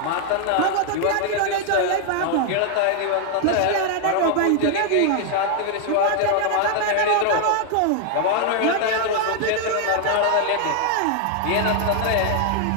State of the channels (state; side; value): different; both; correlation 0.00